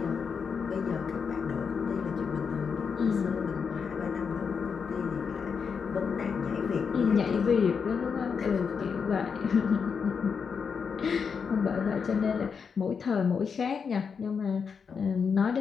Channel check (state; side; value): quieter; right; 6.1 dB